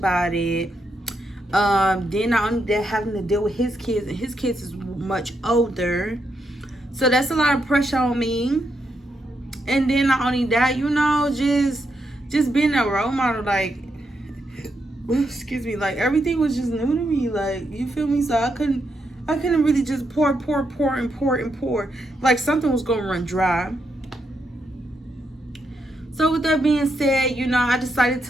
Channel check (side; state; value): both; normal; correlation 0.81